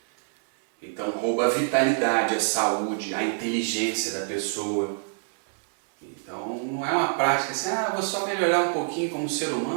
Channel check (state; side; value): silent; left; digital silence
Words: Então rouba a vitalidade, a saúde, a inteligência da pessoa. Então não é uma prática assim, vou só melhorar um pouquinho como ser